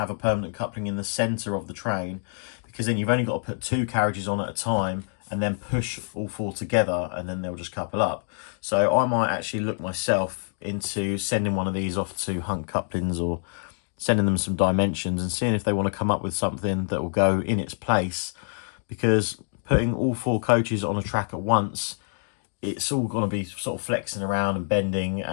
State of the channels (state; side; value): silent; right; 61 dB below the other